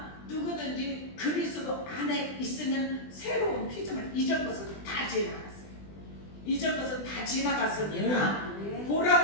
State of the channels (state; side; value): late; right; 20 ms